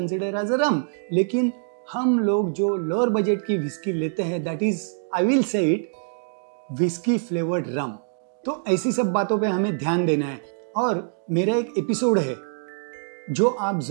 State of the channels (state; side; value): silent; left; digital silence